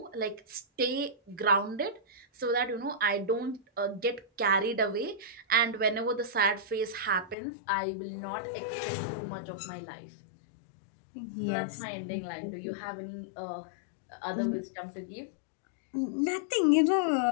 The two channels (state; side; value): drops out; right; at 7.4 s